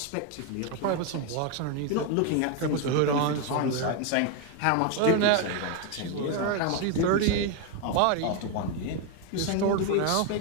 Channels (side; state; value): both; different; correlation 0.01